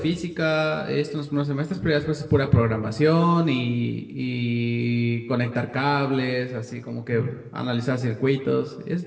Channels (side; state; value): both; identical; correlation 1.00